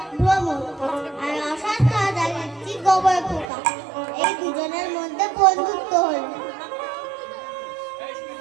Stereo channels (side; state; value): left; drops out; at 3.5 s